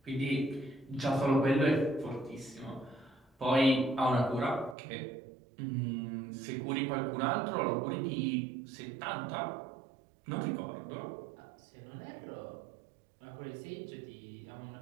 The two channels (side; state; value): left; drops out; at 4.8 s